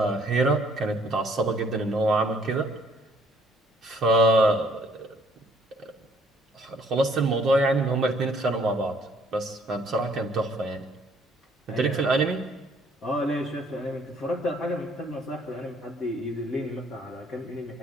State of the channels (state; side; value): normal; both; correlation 0.63